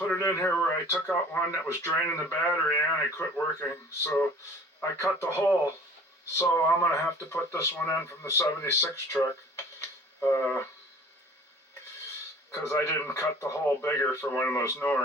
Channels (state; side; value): normal; both; correlation 0.47